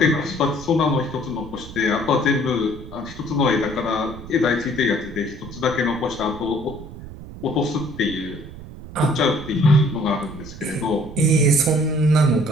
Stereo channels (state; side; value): noise; right; rumble, 14 dB below the sound